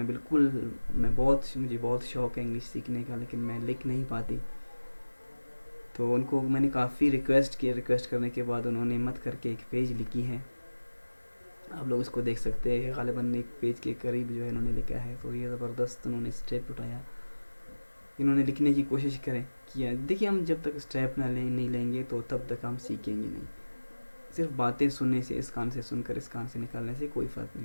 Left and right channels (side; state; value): both; inverted; correlation -1.00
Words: بہت شوق ہے انگلش سیکھنے کا, لیکن میں لکھ نہیں پاتی. تو ان کو میں نے کافی ریکویسٹ کرنے کے بعد انہوں نے ہمت کر کے ایک پیج لکھی ہے, آپ لوگ اس کو دیکھ سکتے ہیں. غالباً ایک پیج کے قریب جو ہے انہوں نے لکھا ہے. تو یہ زبردست انہوں نے اسٹیپ اٹھایا, انہوں نے لکھنے کی کوشش کیا. دیکھیے ہم جب تک اسٹیپ نہیں لیں گے تو تب تک ہم سیکھیں گے نہیں. صرف باتیں سننے سے, اس کان سے سن کر اس کان سے نکالنے سے کوئی فرق